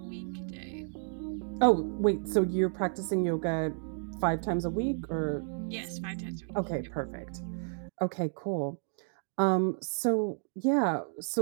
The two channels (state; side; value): silent; left; 57 dB below the other